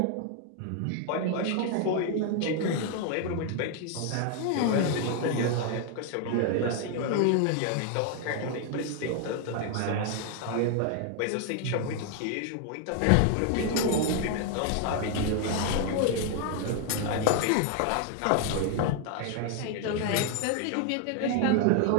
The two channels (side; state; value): both; different; correlation 0.00